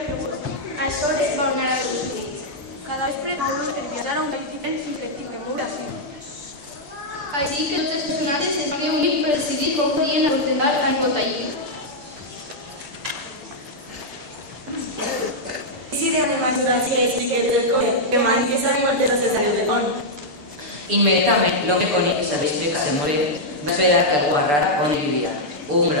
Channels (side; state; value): left; late; 6.8 ms